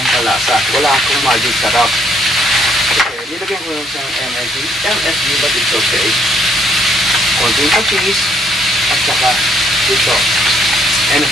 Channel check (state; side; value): normal; both; correlation 0.68